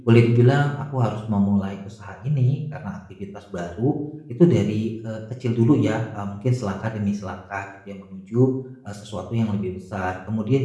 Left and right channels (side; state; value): both; identical; correlation 1.00